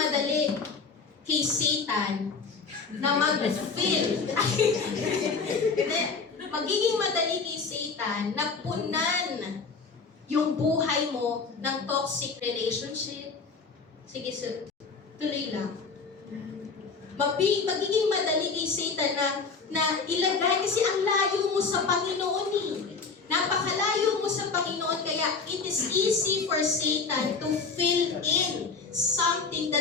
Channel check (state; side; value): quieter; right; 4.8 dB